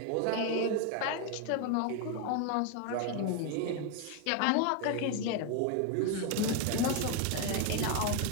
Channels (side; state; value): both; different; correlation 0.01